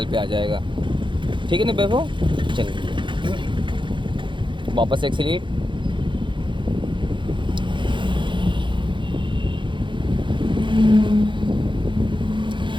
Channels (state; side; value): late; left; 0.23 ms